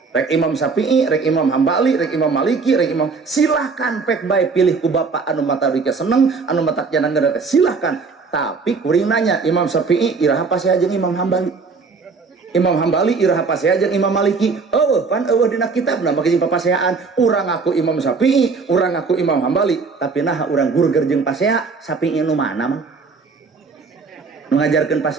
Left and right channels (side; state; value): left; quieter; 4.7 dB